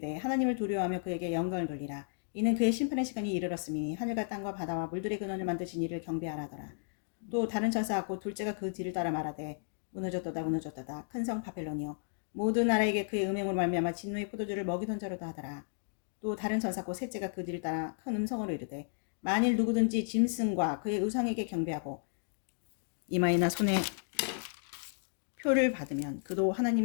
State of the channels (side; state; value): right; silent; digital silence